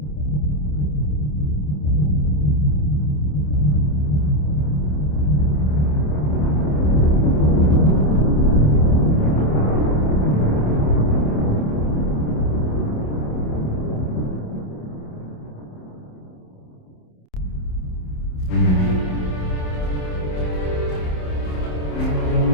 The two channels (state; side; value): late; right; 27 ms